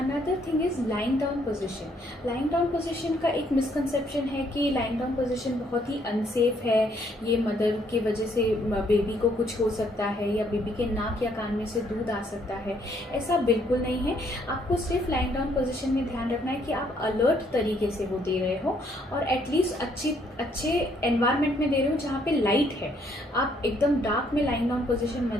thing is lying down position. Lying down position का एक मिसकंसेप्शन है कि लाइंग डाउन पोजिशन बहुत ही अनसेफ है, ये मदर की वजह से बेबी को कुछ हो सकता है या बेबी के नाक या कान में से दूध आ सकता है। ऐसा बिल्कुल नहीं है। आपको सिर्फ लाइंग डाउन पोजिशन में ध्यान रखना है कि आप अलर्ट तरीके से वो दे रहे हो और एटलीस्ट अच्छे एनवायरनमेंट में दे रहे हो जहाँ पे लाइट है। आप एकदम डार्क में लाइंग डाउन पोजीशन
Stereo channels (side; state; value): both; normal; correlation 0.68